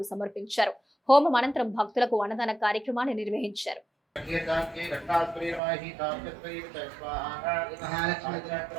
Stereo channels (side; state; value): left; drops out; at 5.6 s